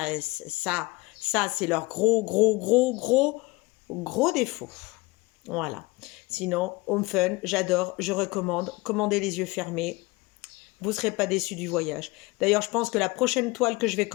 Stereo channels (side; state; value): right; quieter; 23.3 dB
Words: leur gros défaut. Voilà. Sinon, Home Fun, j'adore, je recommande. Commandez les yeux fermés. Vous ne serez pas déçus du voyage. D'ailleurs, je pense que la prochaine toile que je vais